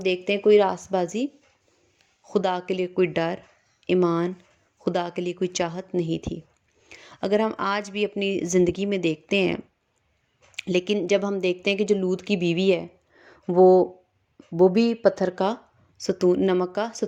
دیکھتے ہیں کوئی راست بازی، خدا کے لیے کوئی ڈر، ایمان، خدا کے لیے کوئی چاہت نہیں تھی۔ اگر ہم آج بھی اپنی زندگی میں دیکھتے ہیں، لیکن جب ہم دیکھتے ہیں کہ جو لوط کی بیوی ہے وہ بھی پتھر کا ستون، نمک کا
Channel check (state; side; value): identical; both; correlation 1.00